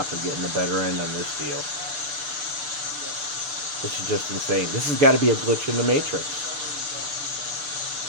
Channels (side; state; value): left; late; 6.8 ms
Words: are getting the better end on this deal. This is just insane. This has got to be a glitch in the Matrix.